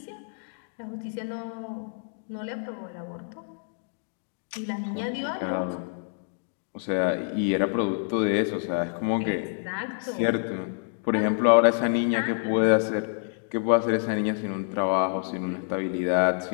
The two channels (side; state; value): right; silent; digital silence